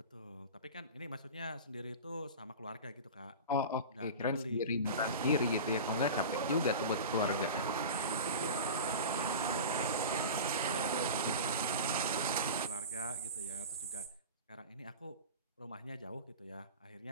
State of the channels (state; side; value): inverted; both; correlation -0.30